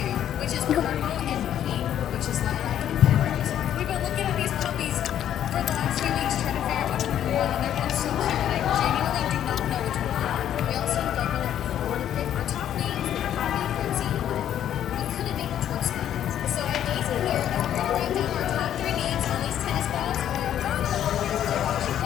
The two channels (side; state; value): right; quieter; 10.6 dB